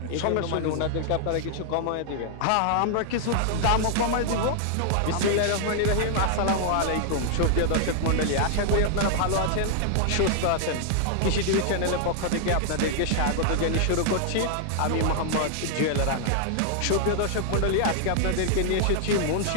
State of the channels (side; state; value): both; different; correlation -0.01